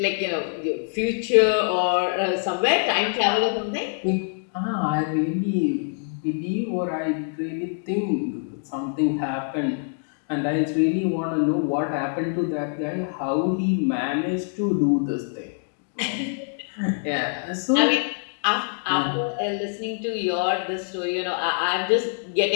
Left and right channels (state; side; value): silent; right; 60 dB below the other